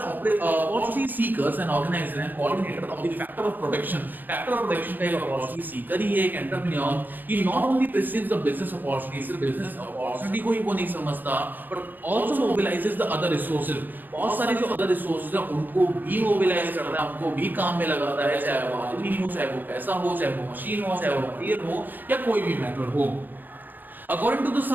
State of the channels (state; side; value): late; left; 0.087 ms